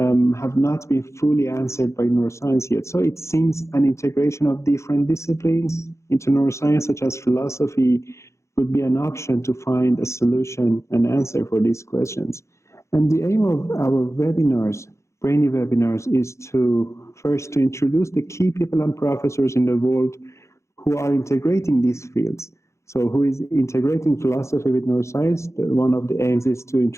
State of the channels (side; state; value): right; late; 0.14 ms